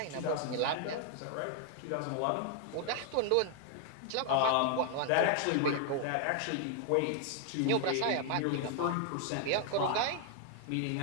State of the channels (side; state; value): both; different; correlation 0.00